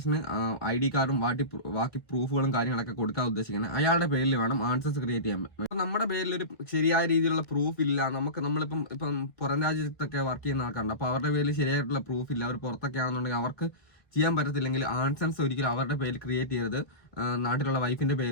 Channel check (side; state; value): right; late; 2.0 ms